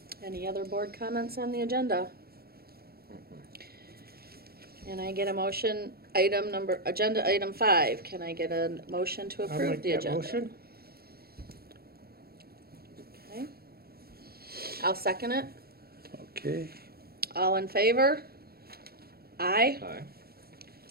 Any other board comments on the agenda? Can I get a motion, agenda item 5, can I get a motion to approve the agenda? Motion. Okay. I'll second it. Okay. All in favor? Aye. Aye.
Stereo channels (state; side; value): late; left; 0.45 ms